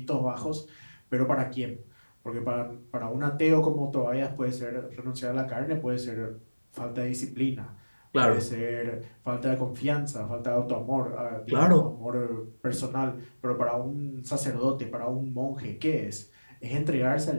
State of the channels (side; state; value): both; inverted; correlation -1.00